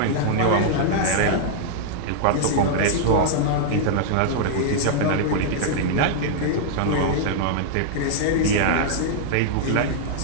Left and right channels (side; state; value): both; different; correlation -0.01